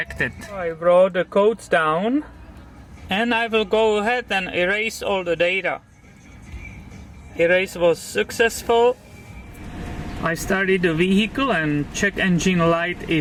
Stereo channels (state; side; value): identical; both; correlation 1.00